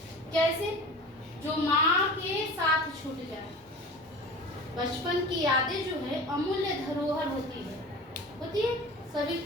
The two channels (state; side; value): normal; both; correlation 0.37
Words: कैसे? जो माँ के साथ छूट जाए। बचपन की यादें जो है अमूल्य धरोहर होती है सभी